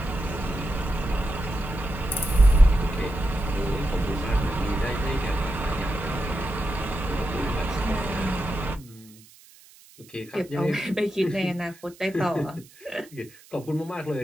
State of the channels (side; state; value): right; noise; hiss, 24 dB below the sound